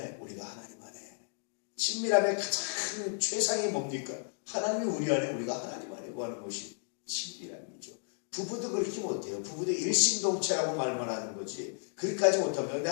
우리가 하나님 안에 친밀함의 가장 최상이 뭡니까? 하나님이 우리 안에 우리가 하나님 안에 구하는 것이 친밀함이죠. 부부도 그렇게 못해요. 부부도 일심동체라고 말만 하는 거지 그렇게까지 못합니다. 근데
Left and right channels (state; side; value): silent; right; digital silence